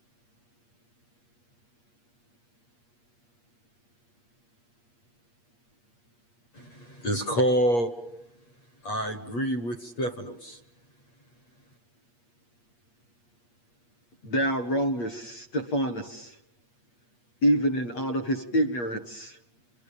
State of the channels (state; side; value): late; right; 8.5 ms